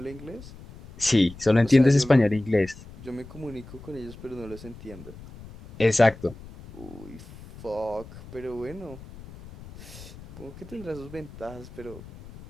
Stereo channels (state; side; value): noise; left; rumble, 17 dB below the sound